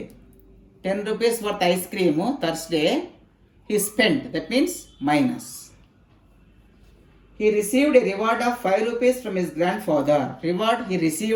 10 rupees worth ice cream Thursday he spent. That means minus. he received a reward of 5 rupees from his grandfather. Reward he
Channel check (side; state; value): both; identical; correlation 1.00